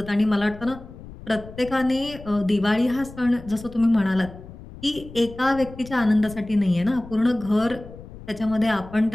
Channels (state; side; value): noise; left; rumble, 16 dB below the sound